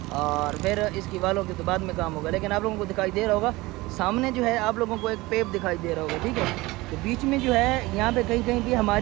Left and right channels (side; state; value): left; quieter; 20.9 dB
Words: और फिर इसकी वालों के तो बाद में काम होगा। लेकिन आप लोगों को दिखाई दे रहा होगा सामने जो है आप लोगों को एक पेप दिखाई दे रहा होगा, ठीक है। तो बीच में जो है यहाँ पे कहीं कहीं भी